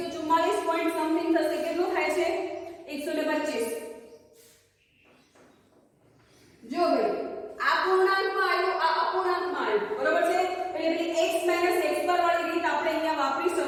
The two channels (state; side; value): identical; both; correlation 1.00